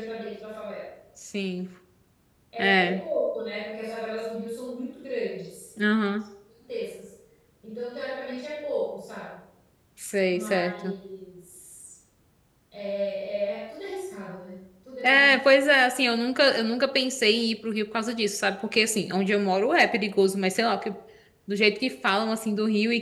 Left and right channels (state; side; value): identical; both; correlation 1.00